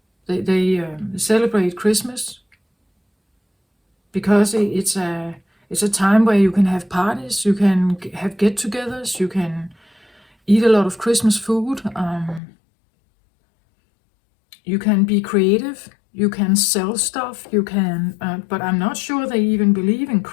They celebrate Christmas because it's a time where you can have parties, you can have get-togethers, you can eat a lot of Christmas food, you can be creative, you can sell stuff, you can, but I'm not sure they even believe in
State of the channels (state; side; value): drops out; right; at 12.4 s